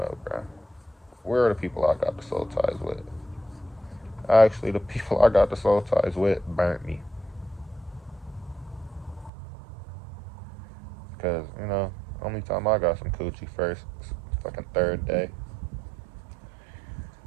bro. Where are the people I got the soul ties with? Actually, the people I got the soul ties with burnt me. Cause only time I got some coochie first, fucking third day.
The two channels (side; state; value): left; drops out; at 9.3 s